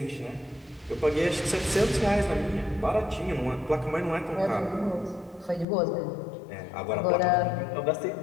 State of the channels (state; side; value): drops out; right; at 5.7 s